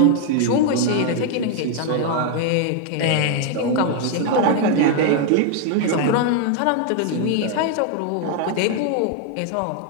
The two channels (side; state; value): both; different; correlation 0.00